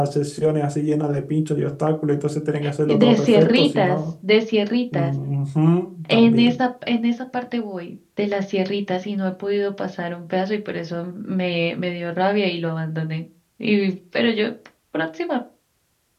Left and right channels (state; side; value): identical; both; correlation 1.00